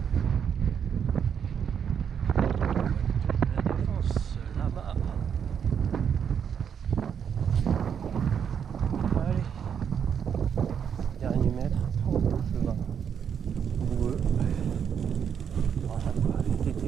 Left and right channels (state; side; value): quieter; left; 7.8 dB